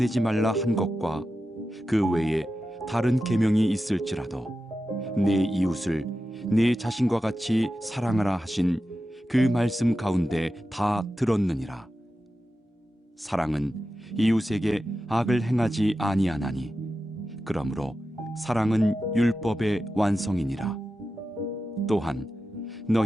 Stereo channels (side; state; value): both; normal; correlation 0.92